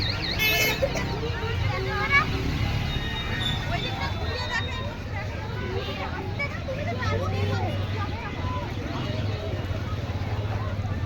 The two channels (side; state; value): both; identical; correlation 1.00